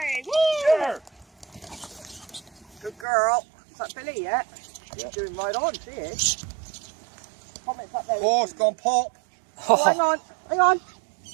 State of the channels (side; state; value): left; drops out; at 3.1 s